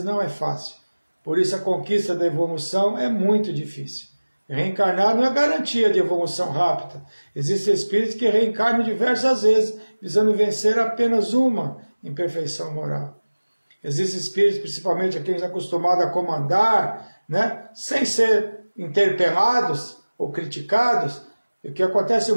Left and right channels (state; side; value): inverted; both; correlation -1.00